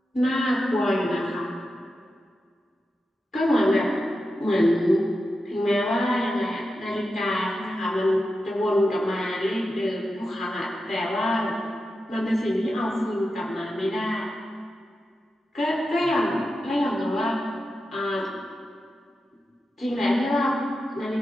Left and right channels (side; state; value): both; normal; correlation 0.90